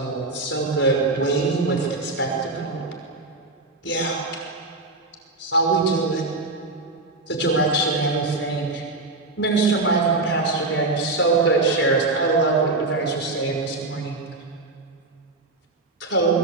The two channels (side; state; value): left; quieter; 3.2 dB